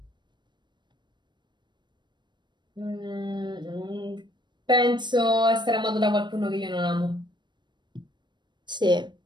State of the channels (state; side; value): late; left; 0.22 ms